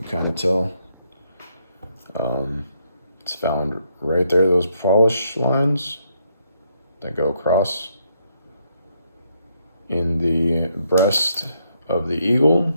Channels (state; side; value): inverted; both; correlation -0.75